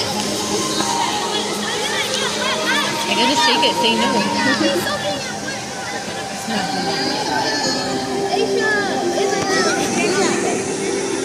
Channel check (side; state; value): both; identical; correlation 1.00